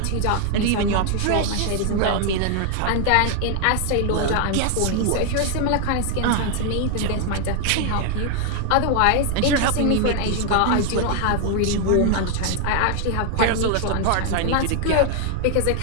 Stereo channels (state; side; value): different; both; correlation 0.00